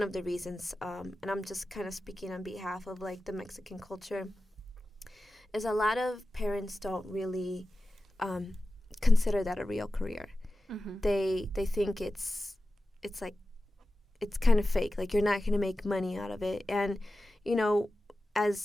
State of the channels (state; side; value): normal; both; correlation 0.94